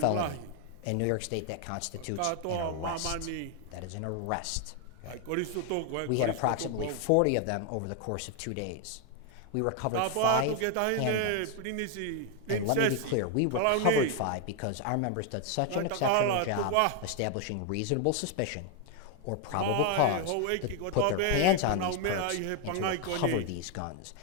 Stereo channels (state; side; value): different; both; correlation 0.01